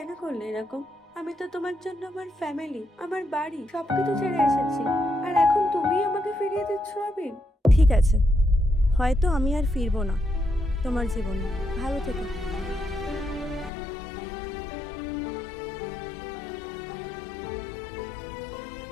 করলে এরকম? আমি তো তোমার জন্য আমার ফ্যামিলি, আমার বাড়ি সবকিছু ছেড়ে এসেছি, আর এখন তুমি আমাকে ফিরিয়ে দিচ্ছ আবির? ঠিক আছে, হয়তো আমি আর ফিরবো না তোমার জীবনে। ভালো থেকো।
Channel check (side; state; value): right; drops out; at 13.7 s